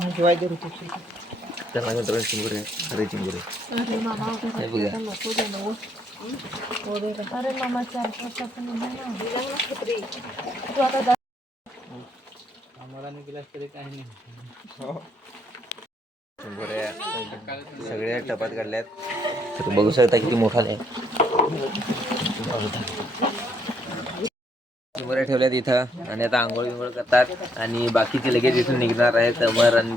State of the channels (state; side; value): normal; both; correlation 0.72